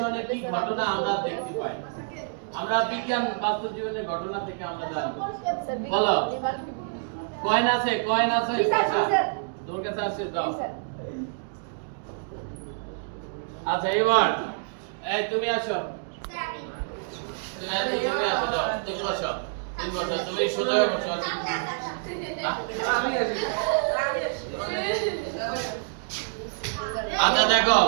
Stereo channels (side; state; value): left; silent; digital silence